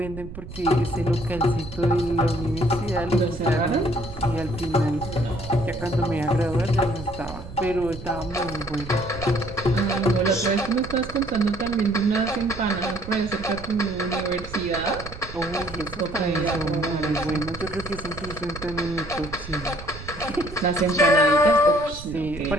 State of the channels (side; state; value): right; noise; rumble, 12 dB below the sound